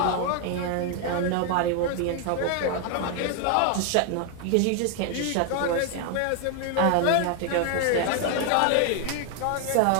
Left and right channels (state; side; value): different; both; correlation 0.00